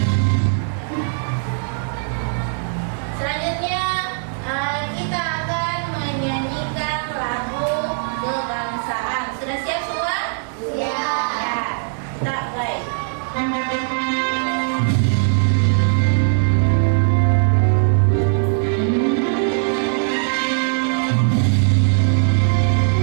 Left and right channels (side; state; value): left; silent; digital silence